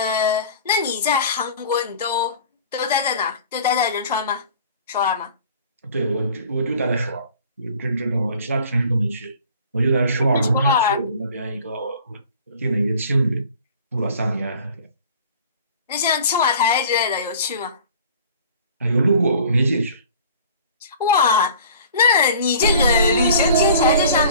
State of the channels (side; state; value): both; inverted; correlation -0.47